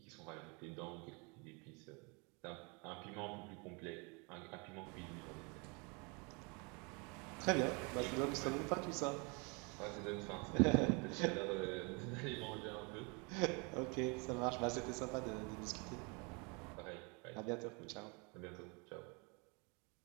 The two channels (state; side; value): quieter; left; 31.5 dB